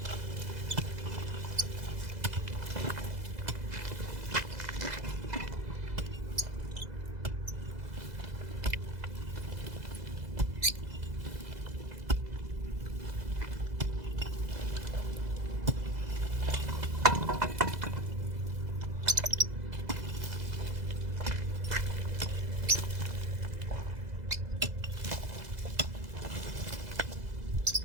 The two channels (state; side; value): late; left; 2.0 ms